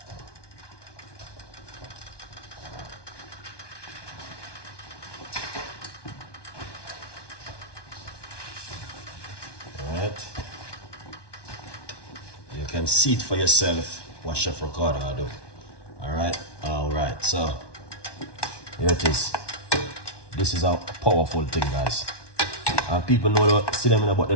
Alright. You can see it for yourself what Chef Ricardo do. Alright, so here it is. This is a powerful thing, guys. And people know that, see them in the but they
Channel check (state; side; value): late; right; 1.2 ms